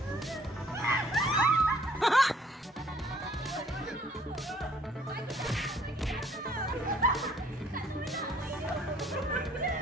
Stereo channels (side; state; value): both; normal; correlation 0.60